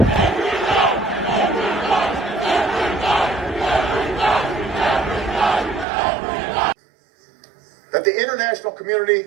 that the international community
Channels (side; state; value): left; drops out; at 5.9 s